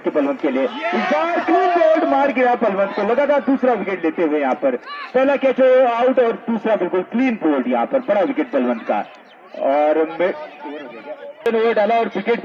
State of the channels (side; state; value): both; identical; correlation 1.00